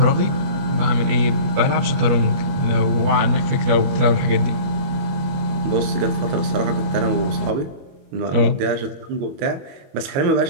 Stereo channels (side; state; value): left; late; 21 ms